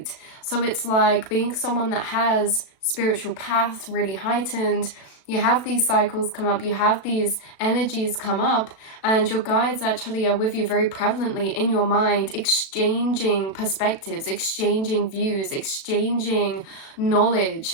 So it's like being someone that has spiritual path really heightened. You have these cycles come up, you have these energies come up, and your guides actually are with you very prevalently in your mind, exchanging perspectives, exchanging views, exchanging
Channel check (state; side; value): late; right; 36 ms